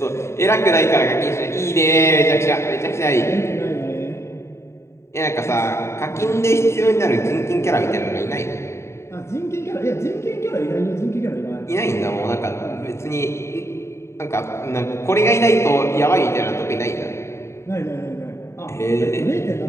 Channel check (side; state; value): right; late; 0.13 ms